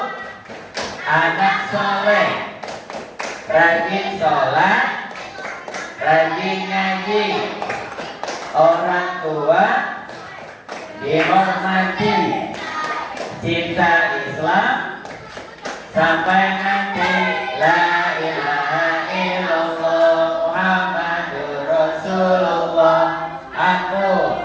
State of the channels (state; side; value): identical; both; correlation 1.00